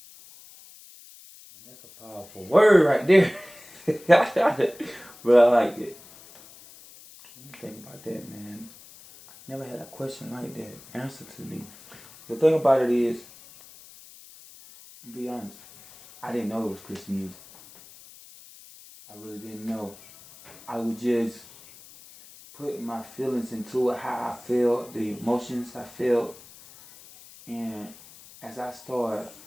That's a powerful word right there. But I like it. What do you think about that, man? I never had a question like that answer to me. The thing about it is, to be honest, I didn't know it was Christian music. I really didn't know. I would just put my feelings into it, how I felt, the emotions I felt. And as I started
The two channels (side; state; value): left; noise; hiss, 21 dB below the sound